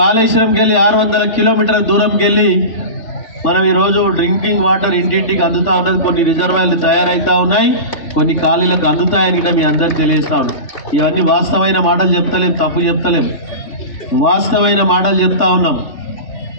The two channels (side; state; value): right; late; 3.5 ms